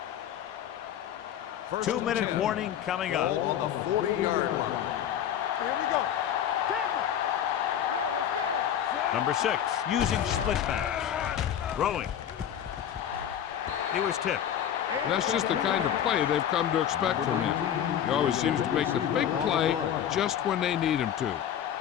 First 2-minute 10. warning coming up. Ball on the 40-yard line. Here we go. Tackle. Let's go. Let's go. Number 6 using split backs. Throwing. He was tipped. That's just the kind of play they've come to expect from him. He always seems to make the big play just when they need him to.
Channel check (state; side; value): quieter; right; 9.9 dB